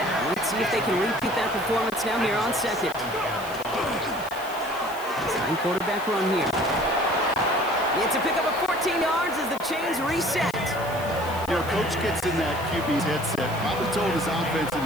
Let's see if they can repeat that performance now here on second. Design quarterback run here. It's a pickup of 14 yards as the chains reset. You know, coach gets in that QB's headset, probably told his offense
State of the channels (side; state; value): left; noise; hiss, 17 dB below the sound